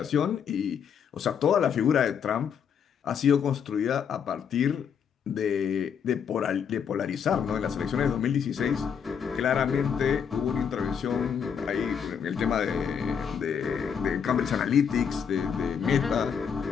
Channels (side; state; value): right; quieter; 7.4 dB